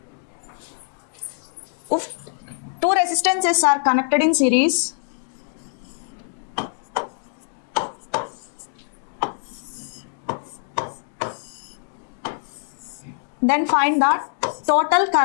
if two resistances are connected in series, then find the total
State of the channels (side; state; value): right; silent; digital silence